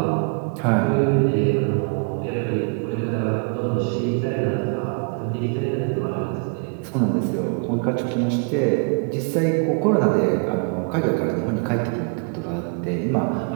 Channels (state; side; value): quieter; left; 36.0 dB